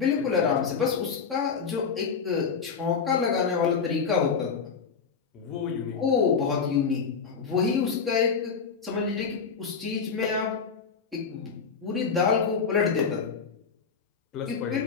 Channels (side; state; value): right; quieter; 5.8 dB